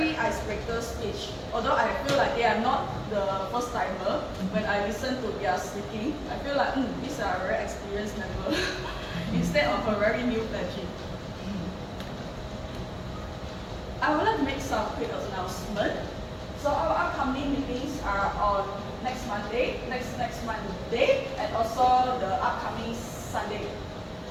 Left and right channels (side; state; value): both; identical; correlation 1.00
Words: icebreaker speech. Although I feel like they are not the first timer, when I listen to their speaking, I feel like these are very experienced members instead of a very new pledging. I would like to make some quick announcement. So our upcoming meetings are on next Monday, next Monday, and also the upcoming Sunday.